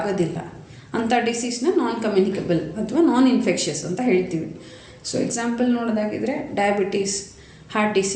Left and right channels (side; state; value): both; identical; correlation 1.00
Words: ಅಂಥ ಡಿಸೀಸ್ನ ನಾನ್ ಕಮ್ಯುನಿಕೇಬಲ್ ಅಥವಾ ನಾನ್ ಇನ್ಫೆಕ್ಷಿಯಸ್ ಅಂತ ಹೇಳ್ತೀವಿ. ಸೊ ಎಕ್ಸಾಂಪಲ್ ನೋಡೋದಾಗಿದ್ರೆ diabetes, heart